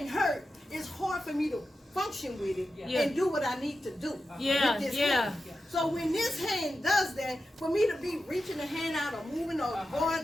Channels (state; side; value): normal; both; correlation 0.91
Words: hurt, it's hard for me to function with it and do what I need to do with this hand. So when this hand does that, for me to be reaching the hand out or moving or